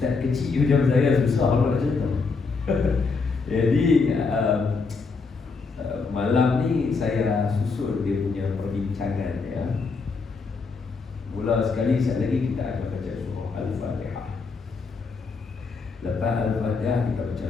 kecil macam saya susah nak cerita. Jadi malam ni saya susun dia punya perbincangan ya. Mula sekali sekali lagi kita akan baca surah Al-Fatihah. Lepas Al-Fatihah kita baca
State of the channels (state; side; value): quieter; right; 4.5 dB